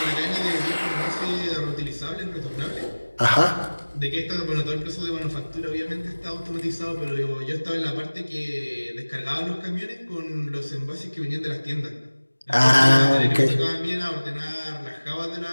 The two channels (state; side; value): inverted; both; correlation -1.00